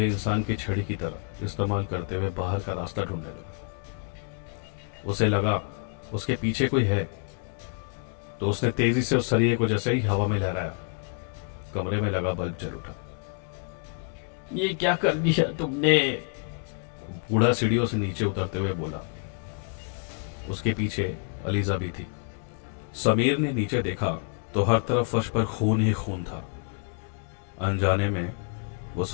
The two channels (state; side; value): quieter; right; 39.4 dB